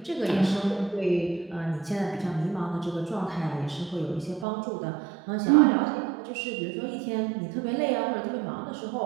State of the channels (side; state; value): left; drops out; at 4.5 s